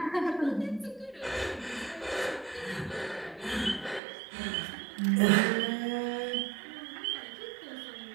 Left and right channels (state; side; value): drops out; left; at 4.0 s